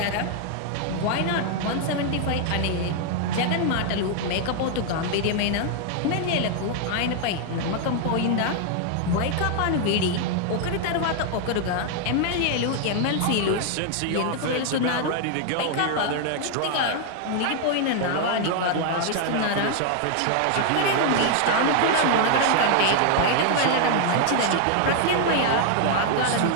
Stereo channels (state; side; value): different; both; correlation 0.00